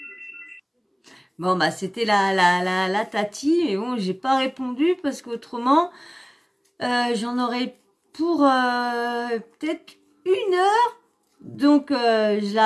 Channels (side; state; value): both; identical; correlation 1.00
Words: Bon, bah, c'était la tati. Et bon, j'ai pas répondu parce qu'autrement, j'en aurais pour peut-être 1 heure. Donc,